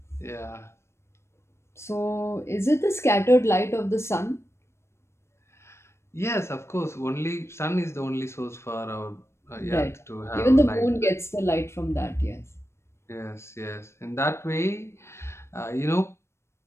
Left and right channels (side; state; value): right; late; 0.13 ms